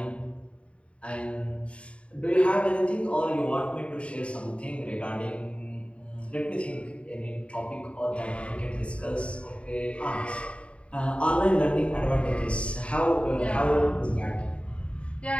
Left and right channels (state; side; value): late; right; 0.060 ms